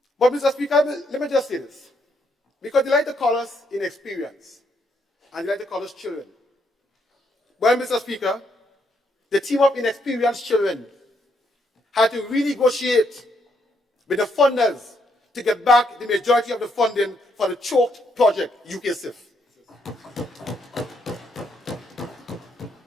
But Mr. Speaker, let me just say this. Because they like to call us inexperienced, and they like to call us children. Well, Mr. Speaker, the team of inexperienced children had to renegotiate with the funders to get back the majority of the funding for the choked project, UK SIF.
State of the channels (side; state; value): both; normal; correlation 0.74